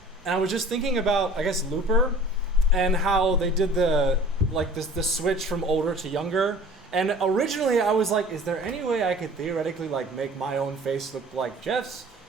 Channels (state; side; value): normal; both; correlation 0.46